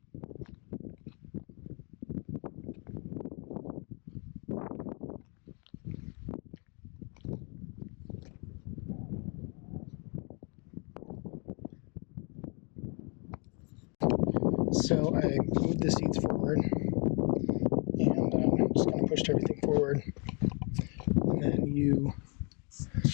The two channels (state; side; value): quieter; right; 34.2 dB